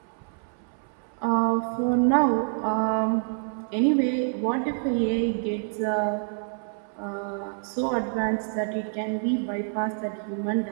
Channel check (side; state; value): left; silent; 60 dB below the other